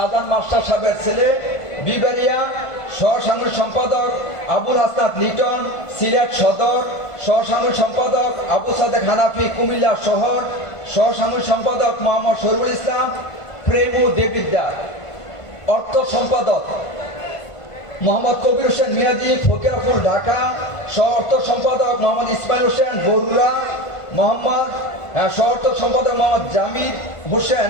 মাস্টার সাহেবের ছেলে, বিবারিয়া। সহসাংগঠনিক সম্পাদক আবুল হাসনাত লিটন, সিলেট সদর। সহসাংগঠনিক সম্পাদক আবু সাদেক হানাফি, কুমিল্লা শহর। সহসাংগঠনিক সম্পাদক মোহাম্মদ শরীফুল ইসলাম, প্রেমু দেবিদ্যার। অর্থ সম্পাদক মোহাম্মদ কবির হোসেন মিয়াজি, ফকিরাপুর, ঢাকা। সহ অর্থ সম্পাদক মোহাম্মদ ইসমাইল হোসেন, বরুড়া। সহ অর্থ সম্পাদক মোহাম্মদ জামিদ হোসেন,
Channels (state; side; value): late; right; 1.5 ms